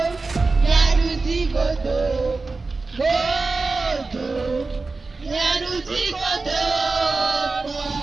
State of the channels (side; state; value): left; quieter; 3.7 dB